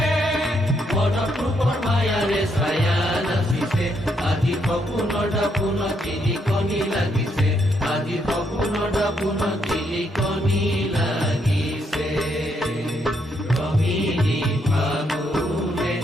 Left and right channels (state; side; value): normal; both; correlation 0.75